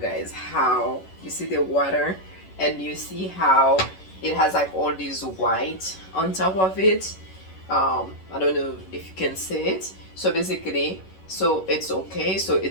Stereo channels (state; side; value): late; right; 11 ms